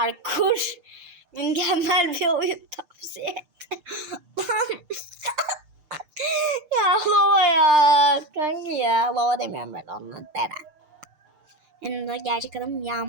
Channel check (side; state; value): left; late; 6.6 ms